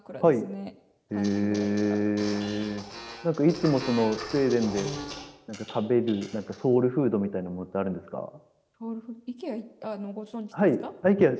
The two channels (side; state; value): both; identical; correlation 1.00